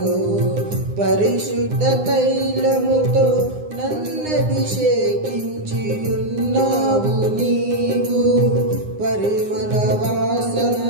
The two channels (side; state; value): left; late; 9.8 ms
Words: పరిశుద్ధ తైలముతో నన్నభిషేకించి ఉన్నావు నీవు. పరిమళ